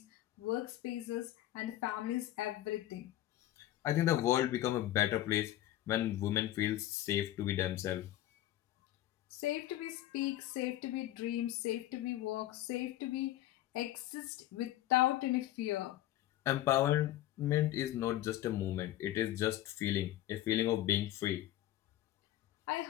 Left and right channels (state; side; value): quieter; right; 14.2 dB